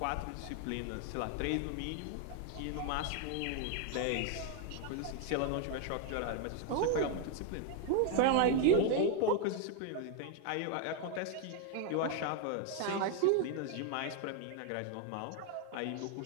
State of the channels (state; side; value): different; both; correlation 0.00